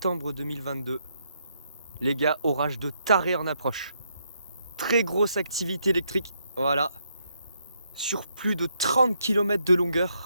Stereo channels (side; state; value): both; inverted; correlation -0.76